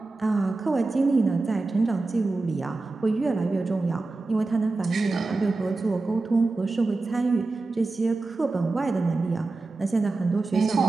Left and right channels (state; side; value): quieter; left; 3.4 dB